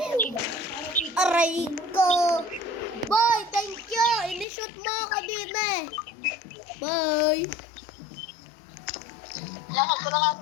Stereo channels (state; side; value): drops out; right; at 4.5 s